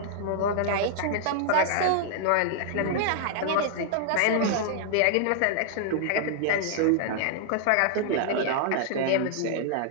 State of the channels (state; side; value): different; both; correlation -0.01